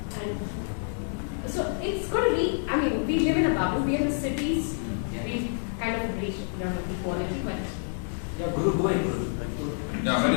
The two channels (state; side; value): silent; right; 59 dB below the other